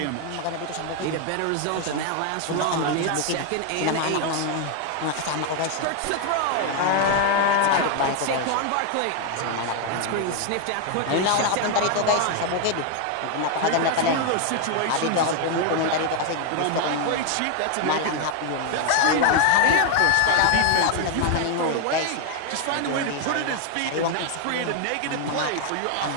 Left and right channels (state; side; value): different; both; correlation 0.00